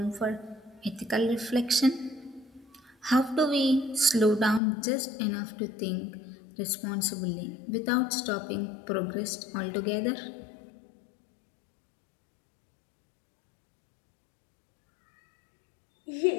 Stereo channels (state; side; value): drops out; right; at 4.6 s